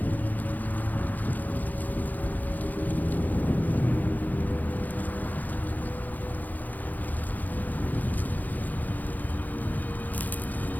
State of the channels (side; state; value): right; late; 0.083 ms